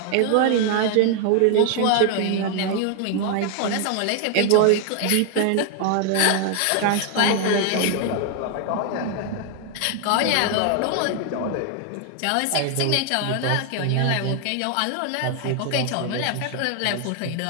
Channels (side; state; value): both; different; correlation 0.00